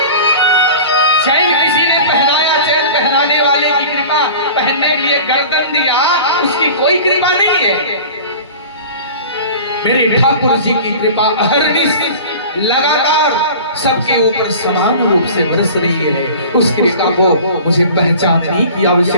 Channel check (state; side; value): inverted; both; correlation -0.39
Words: चैन किसी ने पहनाया, चैन पहनाने वाले की कृपा, पहनने के लिए गर्दन दिया उसकी कोई कृपा नहीं है। मेरे ठाकुर जी की कृपा अहरनिश लगातार सबके ऊपर समान रूप से बरस रही है। उस कृपा को मुझे पहचानने की